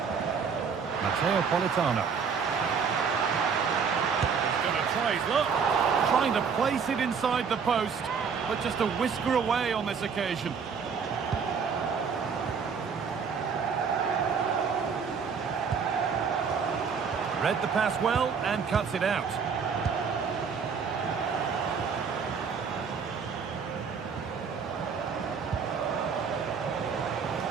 Politano. He's going to try his luck. Trying to place it inside the post, but just a whisker away on this occasion. Read the pass well and cuts it out.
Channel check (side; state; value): left; quieter; 6.1 dB